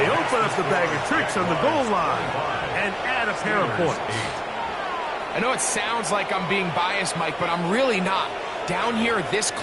open up the bag of tricks on the goal line and add a pair of points. I know it sounds like I'm being biased, Mike, but I'm really not. Down here this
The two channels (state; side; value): identical; both; correlation 1.00